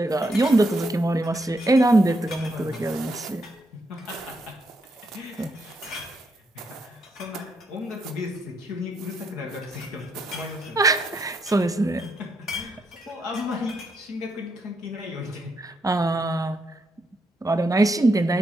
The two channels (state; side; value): normal; both; correlation 0.78